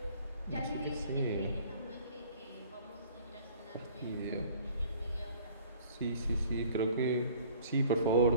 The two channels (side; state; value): both; inverted; correlation -0.52